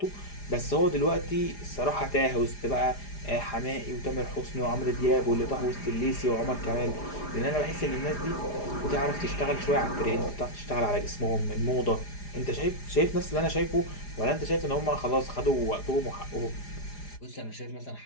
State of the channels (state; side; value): late; right; 4.9 ms